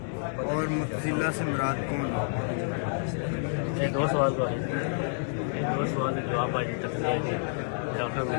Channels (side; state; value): right; silent; 59 dB below the other